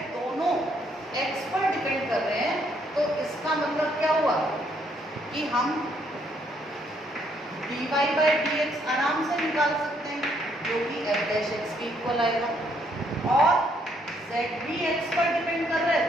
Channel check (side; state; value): both; normal; correlation 0.70